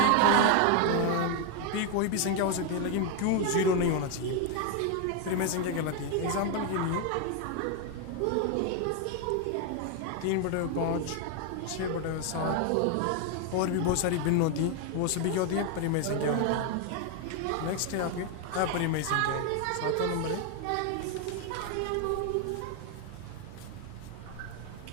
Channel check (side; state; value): both; different; correlation 0.01